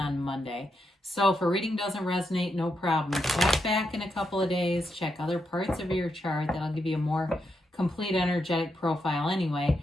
Monday. So if a reading doesn't resonate, no problem. Check back in a couple of days. Check other parts of your chart. That'll give you a more complete energetic profile anyway.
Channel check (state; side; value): normal; both; correlation 0.83